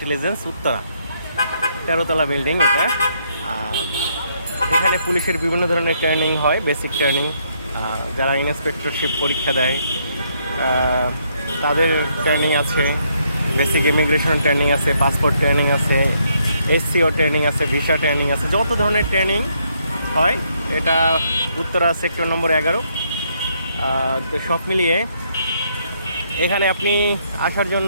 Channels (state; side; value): inverted; both; correlation -0.73